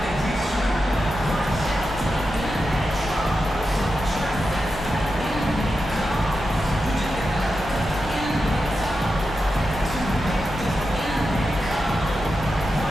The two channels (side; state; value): both; normal; correlation 0.89